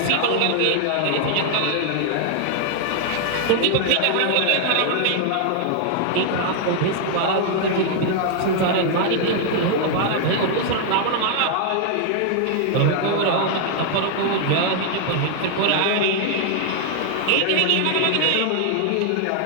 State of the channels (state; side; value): different; both; correlation 0.00